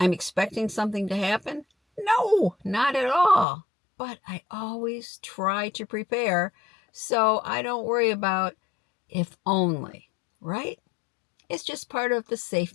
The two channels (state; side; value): drops out; right; at 3.5 s